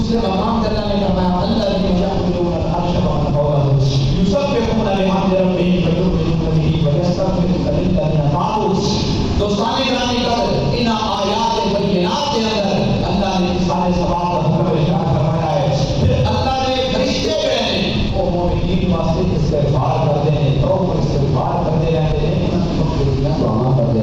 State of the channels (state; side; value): identical; both; correlation 1.00